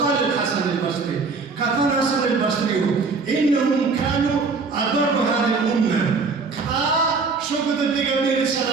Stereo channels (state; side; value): quieter; left; 4.4 dB